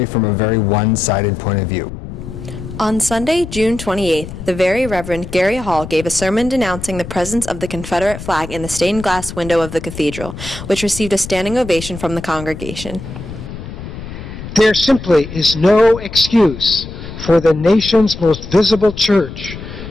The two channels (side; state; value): left; noise; rumble, 11 dB below the sound